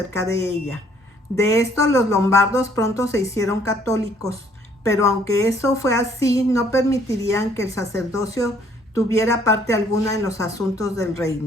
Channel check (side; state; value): both; normal; correlation 0.63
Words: de ella. De esto los lombardos pronto se hicieron católicos, pero aunque eso fue así, no permitirían que el sacerdocio tuviera parte alguna en los asuntos del